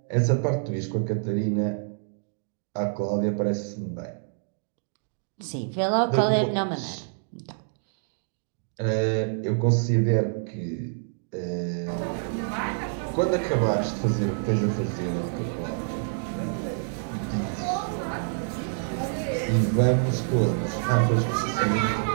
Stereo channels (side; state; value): left; silent; digital silence